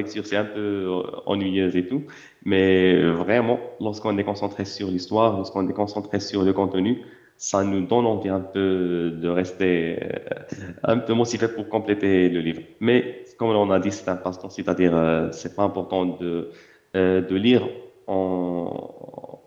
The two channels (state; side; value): identical; both; correlation 1.00